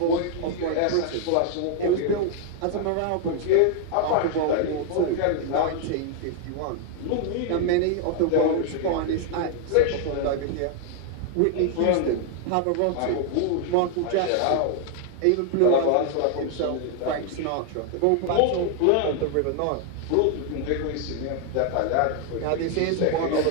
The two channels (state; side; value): different; both; correlation 0.00